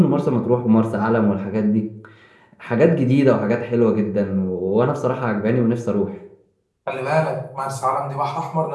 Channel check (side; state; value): both; identical; correlation 1.00